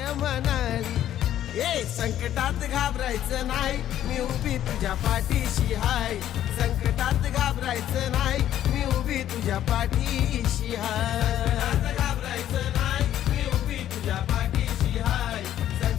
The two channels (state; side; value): quieter; right; 11.7 dB